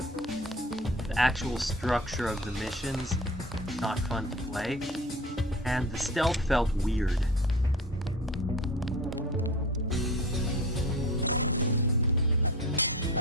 the actual structure of the missions, not fun to play, and the stealth felt weird.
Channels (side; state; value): both; normal; correlation 0.37